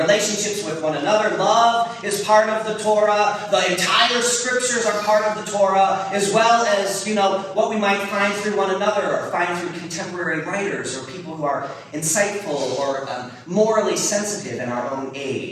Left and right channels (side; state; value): both; identical; correlation 1.00